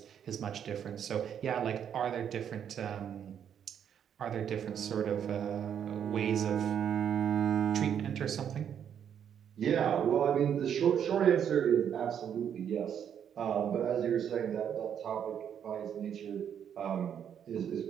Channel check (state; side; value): quieter; left; 8.7 dB